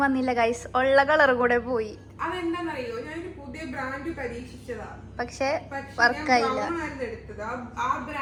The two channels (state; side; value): identical; both; correlation 1.00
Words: വന്നില്ല ഗൈസ്, ഉള്ള കളർ കൂടെ പോയി. അതെന്താന്നറിയോ, ഞാനൊരു പുതിയ ബ്രാൻഡ് പരീക്ഷിച്ചതാ, പക്ഷെ വർക്കായില്ല. ആ